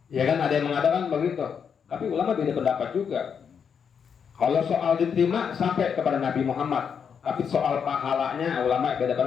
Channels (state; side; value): quieter; right; 7.0 dB